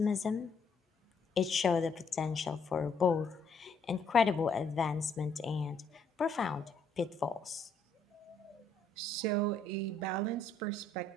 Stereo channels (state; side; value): quieter; right; 3.3 dB